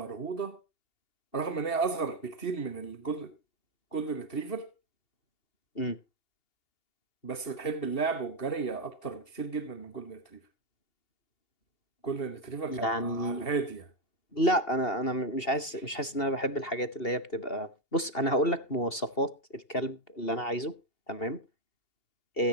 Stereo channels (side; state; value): right; late; 2.7 ms